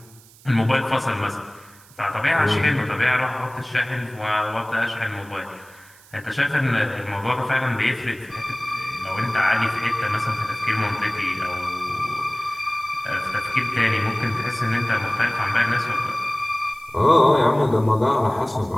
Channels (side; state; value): right; noise; hiss, 25 dB below the sound